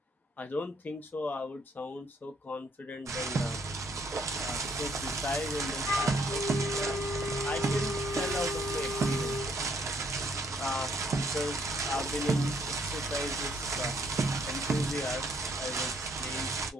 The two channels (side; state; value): both; normal; correlation 0.68